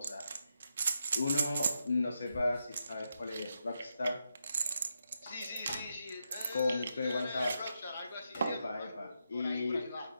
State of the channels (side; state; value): both; inverted; correlation -0.83